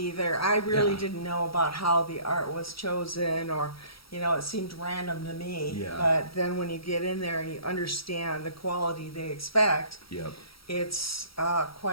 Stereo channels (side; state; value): right; late; 0.75 ms